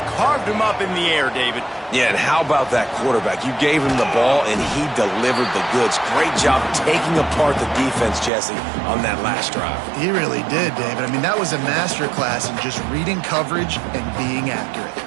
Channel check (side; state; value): left; drops out; at 8.3 s